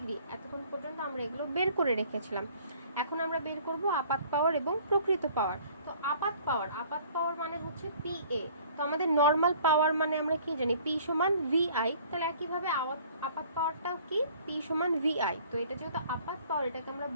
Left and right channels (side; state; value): both; inverted; correlation -0.53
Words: এতক্ষণ পর্যন্ত আমরা এগুলো বের করে রেখেছিলাম। এখন আমরা বের করব আপাত পাওয়ার এবং প্রকৃত পাওয়ার। তো আপাত পাওয়ার মানে হচ্ছে পিএ। তো আমাদের নর্মাল পাওয়ার মানে আমরা কি জানি পি সমান ভিআই, তাহলে একইভাবে আপাত পাওয়ারটাও কি পি সমান ভিআই। তো এটা যেহেতু আপাত পাওয়ার, এটাকে আমরা